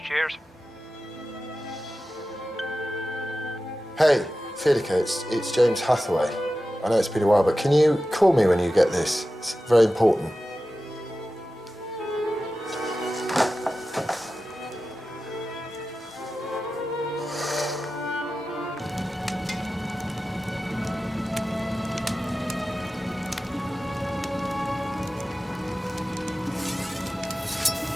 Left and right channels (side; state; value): both; normal; correlation 0.94